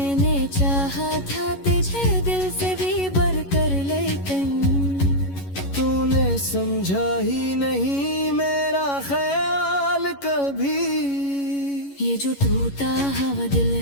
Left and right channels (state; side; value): late; right; 11 ms